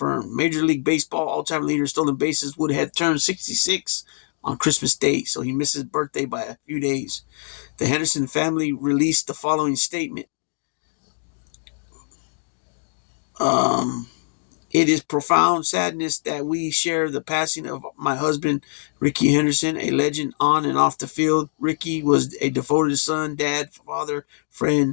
Major League Baseball all-time leader stolen bases would have turned 66 on Christmas Day, so he missed his birthday by a few days. The Henderson family released the following statement. It is profound sadness that we share the passing of my husband, Ricky Henderson, a legend on and off the field. Ricky was a devoted son, dad, father,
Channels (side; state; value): right; silent; digital silence